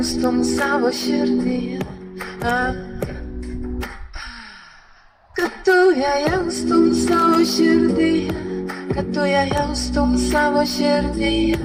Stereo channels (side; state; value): both; identical; correlation 1.00